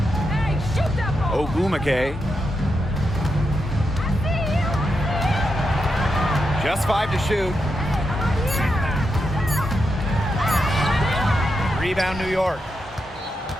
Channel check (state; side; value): normal; both; correlation 0.85